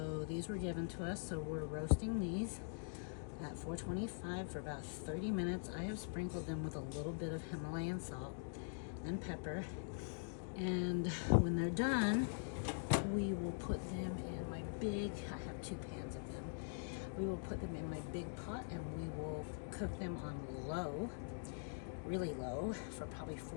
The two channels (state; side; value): silent; right; digital silence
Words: these were given to us. So we're roasting these at 425 for about 30 minutes. I have sprinkled them with a little bit of Himalayan salt and pepper, and when they're done, we will put them in my big, I have 2 pans of them. We will put them in my big pot and we will cook them on low, really low, for probably